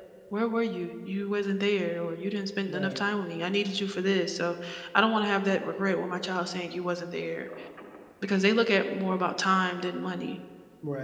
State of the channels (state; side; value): identical; both; correlation 1.00